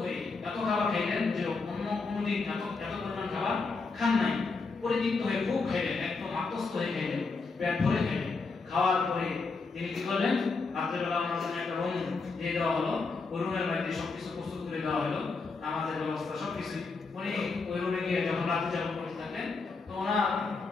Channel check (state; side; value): quieter; right; 4.2 dB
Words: হয়ে এত খাবার খাইলেন যে অন্য কোনোদিন এত পরিমাণ খাবার খান নাই। পরিতৃপ্ত হয়ে খুব খাইলেন, একদম আত্মস্থ হয়ে খাইলেন, পেট ভরে খাইলেন। খাওয়ার পরে তিনি কি করলেন, রাত্রেবেলা ওনার জন্য একটা রুম দিয়ে দেওয়া হলো, ওই রুমের মধ্যে সবকিছু প্রস্তুত করে দেওয়া হলো, নামাজের ব্যবস্থা সবকিছু। উনি ওই রুমে গিয়ে যখন রাত্রি যাপন করতে থাকলেন, তো ওনার